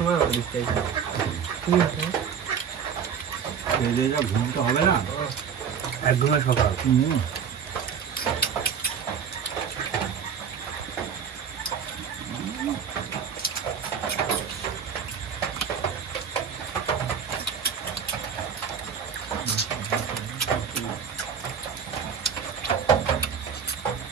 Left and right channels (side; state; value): left; quieter; 7.3 dB